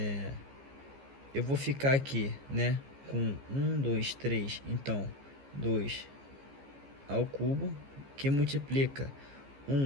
Eu vou ficar aqui, né, com 1, 2, 3, então 2 ao cubo, que multiplica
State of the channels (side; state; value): left; late; 15 ms